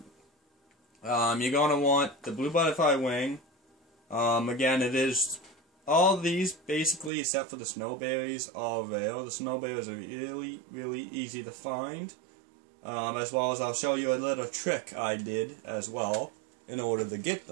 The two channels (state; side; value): drops out; left; at 7.1 s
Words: You're going to want the blue butterfly wing. Again, it is all these basically, except for the snowberries, are rare. The snowberries are really, really easy to find. As well as I'll show you a little trick I did as well in order to get